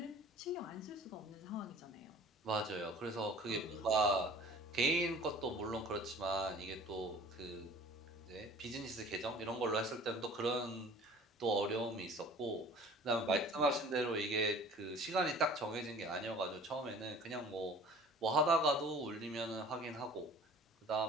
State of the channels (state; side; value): normal; both; correlation 0.47